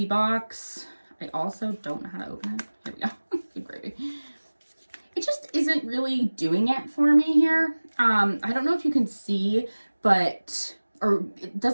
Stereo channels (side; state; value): both; inverted; correlation -1.00